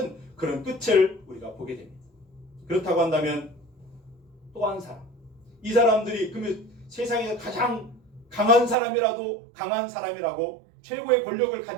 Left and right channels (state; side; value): drops out; left; at 8.8 s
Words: 그런 끝을 우리가 보게 됩니다. 그렇다고 한다면 또 한 사람, 이 사람들이 그러면 세상에서 가장 강한 사람이라고 최고의 권력을